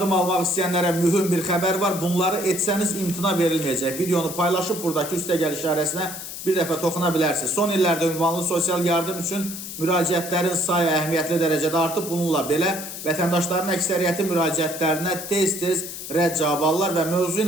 almak isteyenlere mühüm bir haber var. Bunları etseniz imtina verilmeyecek. Videonu paylaşıp buradaki üste gel işaresine bir defa toxunabilirsiniz. Son illərdə ünvanlı sosial yardım üçün müraciətlərin sayı əhəmiyyətli dərəcədə artıb. Bununla belə vətəndaşların əksəriyyəti müraciətlərinə tez-tez rədd cavab alırlar və mövzu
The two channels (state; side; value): noise; left; hiss, 9 dB below the sound